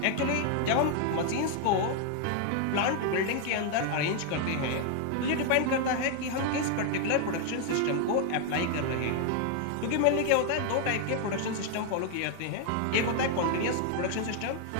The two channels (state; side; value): different; both; correlation 0.00